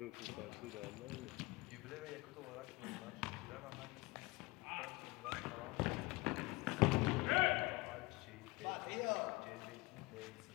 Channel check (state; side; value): quieter; right; 23.4 dB